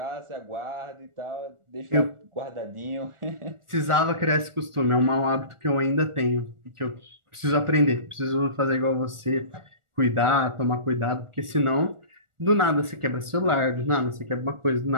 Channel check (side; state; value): left; late; 1.4 ms